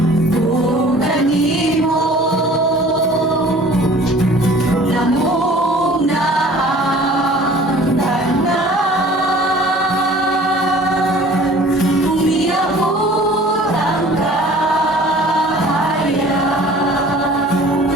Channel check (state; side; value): normal; both; correlation 0.49